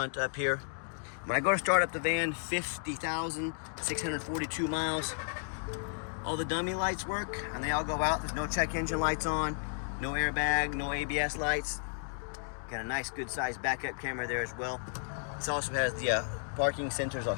up here. When I go to start up the van, 50,642 miles. All the dummy lights work and they all go out. There's no check engine lights on, no airbag, no ABS lights. Got a nice good sized backup camera there as well. This also has the parking sensors. I'll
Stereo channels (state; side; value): silent; right; digital silence